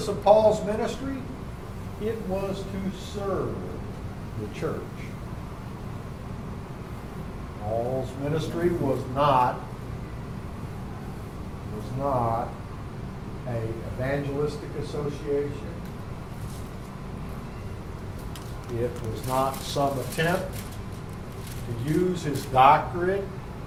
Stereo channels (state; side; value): identical; both; correlation 1.00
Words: of Paul's ministry? It was to serve the church. Paul's ministry was not a evangelistic association. It was not some attempt to use his doctorate